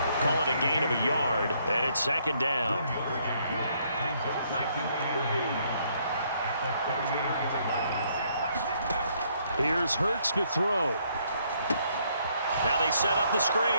Call it a gain of a yard, and it's 2nd down. Here's Hurts to throw. Now they set up the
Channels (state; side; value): inverted; both; correlation -0.69